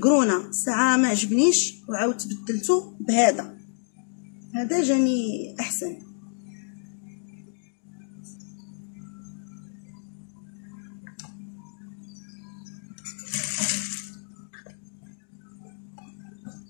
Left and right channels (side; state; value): right; silent; digital silence